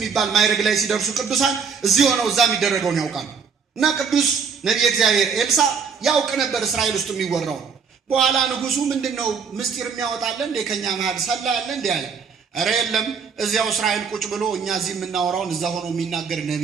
ማይረግ ላይ ሲደርሱ ቅዱሳን እዚህ ሆነው እዛ የሚደረገውን ያውቃሉ። እና ቅዱስ ነብይ እግዚአብሔር ኤልሳ ያውቅ ነበር እስራኤል ውስጥ የሚወራው። በኋላ ንጉሱ ምንድነው ምስጢር የሚያወጣለ እንደ ከኛ መሃል ሰላ ያለ እንደ ያለ፣ ኧረ የለም እዚያው እስራኤል ቁጭ ብሎ እኛ እዚህ የምናወራውን እዛ ሆኖ የሚናገር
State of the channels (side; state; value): left; quieter; 5.9 dB